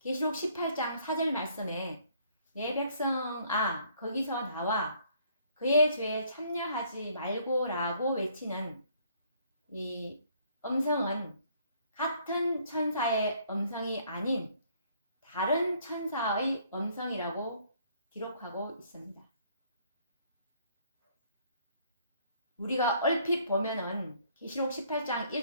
18장 4절 말씀에 내 백성아 거기서 나와 그의 죄에 참여하지 말고 라고 외치는 이 음성은 같은 천사의 음성이 아닌 다른 천사의 음성이라고 기록하고 있습니다. 우리가 얼핏 보면은 계시록 18장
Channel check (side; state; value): both; inverted; correlation -0.63